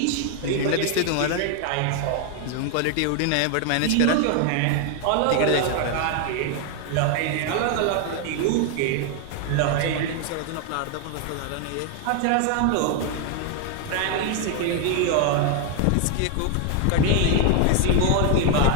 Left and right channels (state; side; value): different; both; correlation 0.00